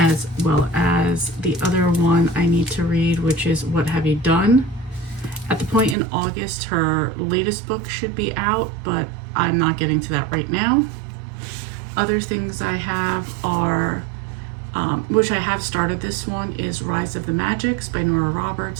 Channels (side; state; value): left; drops out; at 6.0 s